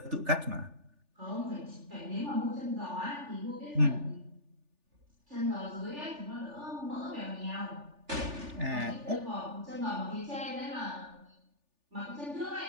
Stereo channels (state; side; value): late; left; 3.4 ms